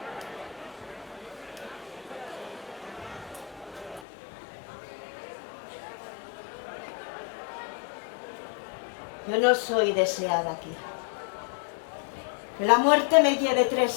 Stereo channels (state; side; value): drops out; right; at 4.0 s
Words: Yo no soy deseada aquí. Que la muerte me lleve